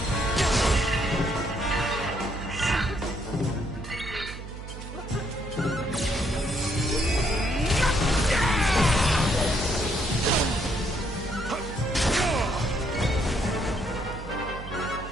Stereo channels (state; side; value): noise; right; hum, 11 dB below the sound